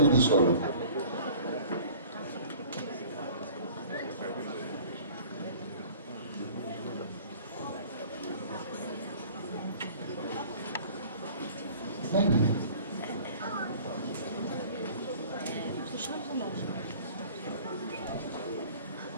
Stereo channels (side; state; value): both; inverted; correlation -0.46